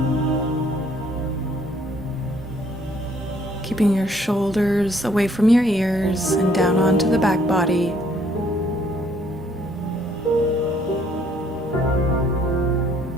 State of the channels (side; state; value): both; normal; correlation 0.64